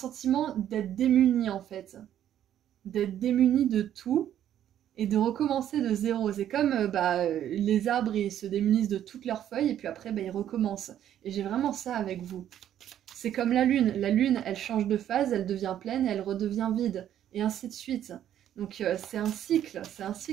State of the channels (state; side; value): quieter; left; 10.9 dB